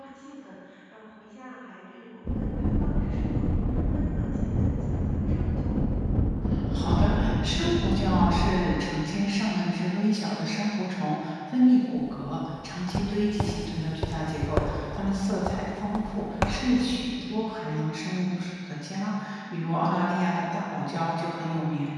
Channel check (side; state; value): both; identical; correlation 1.00